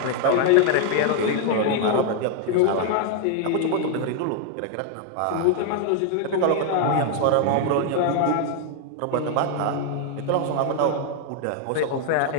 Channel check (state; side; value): different; both; correlation 0.00